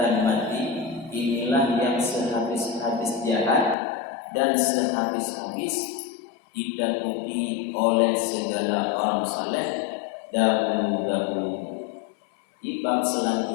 mati inilah yang sehabis-habis jahat dan sehabis-habis ditakuti oleh segala orang saleh dahulu-dahulu. Di bab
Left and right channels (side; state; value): right; drops out; at 3.8 s